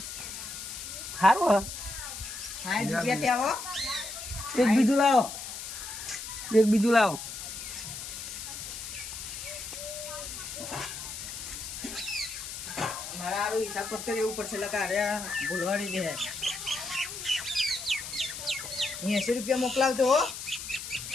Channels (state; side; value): noise; left; hiss, 8 dB below the sound